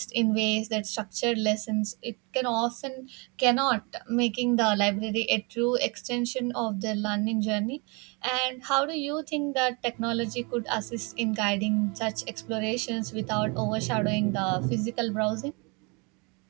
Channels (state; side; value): quieter; left; 31.1 dB